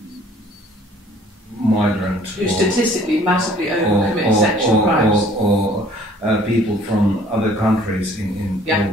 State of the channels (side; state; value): both; normal; correlation 0.55